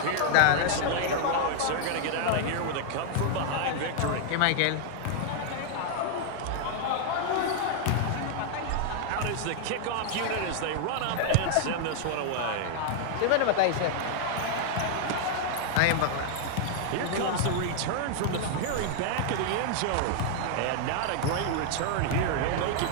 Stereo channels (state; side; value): different; both; correlation 0.00